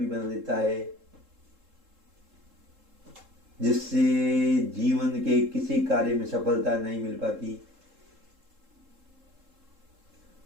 बना देता है, जिससे जीवन के किसी कार्य में सफलता नहीं मिल पाती।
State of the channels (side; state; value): left; late; 3.7 ms